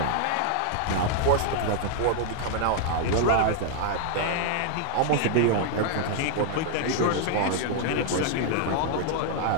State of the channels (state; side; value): different; both; correlation 0.00